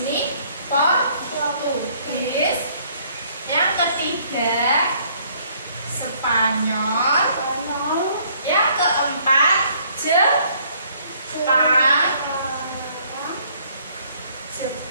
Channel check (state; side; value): inverted; both; correlation -0.63